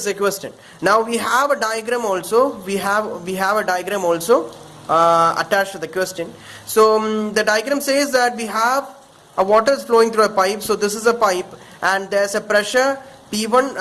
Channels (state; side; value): identical; both; correlation 1.00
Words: a question. Now we have a diagram also. We have a diagram also attached to the question. So the diagram says that we have a water is flowing through a pipe. So this is a pipe, and there's a pressure